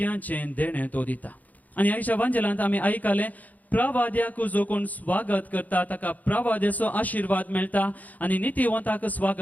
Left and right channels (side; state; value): right; late; 0.078 ms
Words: देणें तो दिता आनी आयच्या वांजेलांत आमी आयकलें प्रवाद्याक जो कोण स्वागत करता ताका प्रवाद्याचो आशिर्वाद मेळटा आनी नितीवंताक